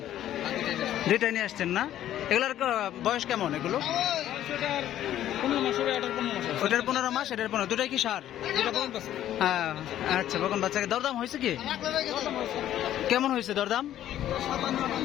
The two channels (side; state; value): right; quieter; 12.0 dB